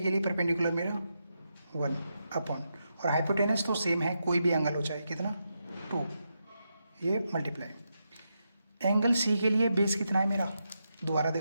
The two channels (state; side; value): inverted; both; correlation -0.85